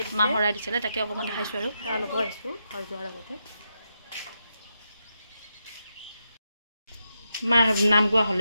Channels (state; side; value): inverted; both; correlation -0.85